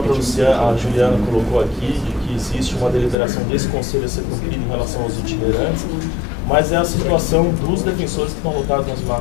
a Juliana colocou aqui, de que existe uma deliberação desse conselho a ser cumprida em relação aos itinerantes, mas é a situação dos defensores que estão lotados nas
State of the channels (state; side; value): drops out; right; at 3.2 s